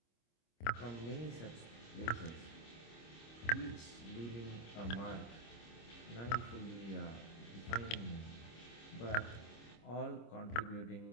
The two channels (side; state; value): right; late; 25 ms